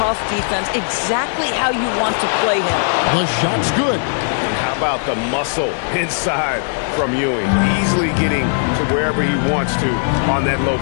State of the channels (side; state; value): right; silent; digital silence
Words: defense. Exactly how you want to play him. The shot's good. And how about the muscle inside from Ewing? Easily getting to wherever he wants to on that low